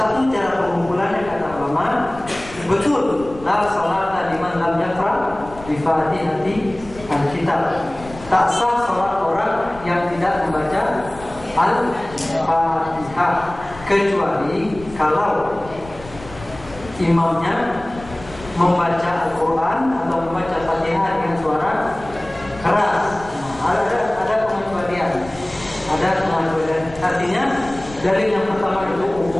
cara pengumpulannya kata ulama, betul la salata liman lam yaqra bi Fatihati al-kitab. Tak sah salat orang yang tidak membaca Al-Fatihah, kecuali kalau imamnya membaca Al-Quran atau membaca Fatihah dengan suara keras. Ada pengecualian. Artinya dalil yang pertama itu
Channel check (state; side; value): noise; left; rumble, 17 dB below the sound